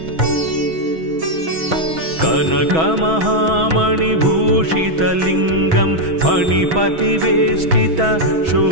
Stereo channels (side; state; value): left; late; 6.1 ms